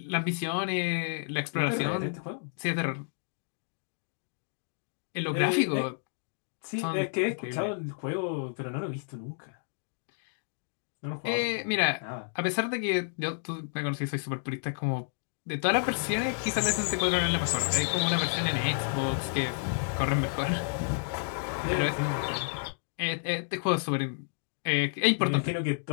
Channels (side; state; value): right; silent; digital silence